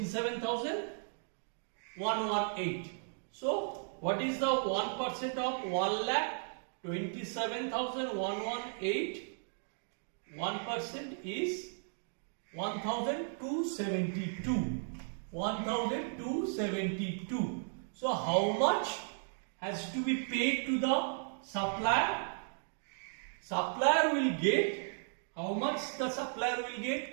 So what is the 1% of 1,27,118? 1% is 1,272. 1,272. So how much has to be paid to the supplier? Supplier will get, how much the supplier will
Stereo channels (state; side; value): silent; left; digital silence